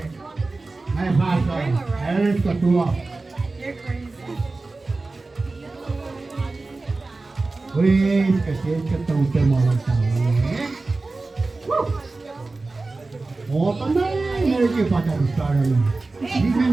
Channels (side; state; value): left; quieter; 3.4 dB